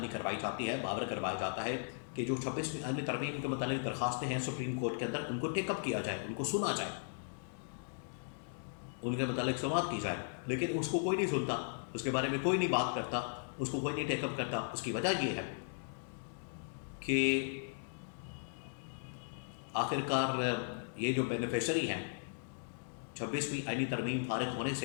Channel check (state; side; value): silent; right; digital silence